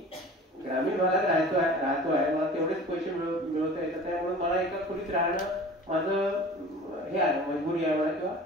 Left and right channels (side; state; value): both; normal; correlation 0.41